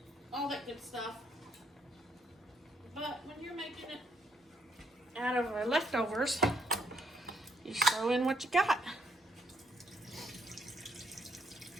all that good stuff. But when you're making it out of leftovers, you just throw in what you got.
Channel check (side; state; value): both; normal; correlation 0.72